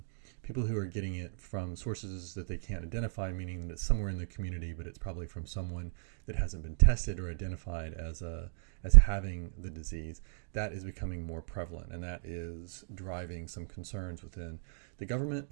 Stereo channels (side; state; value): left; silent; digital silence